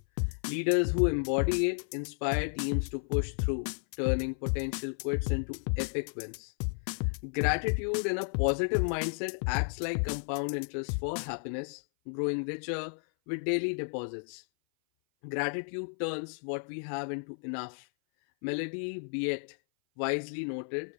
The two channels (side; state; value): right; silent; 56 dB below the other